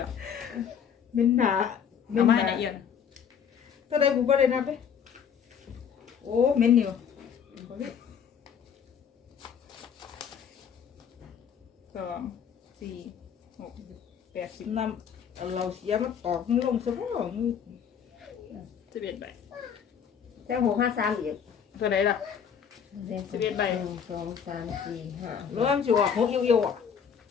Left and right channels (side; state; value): right; quieter; 7.6 dB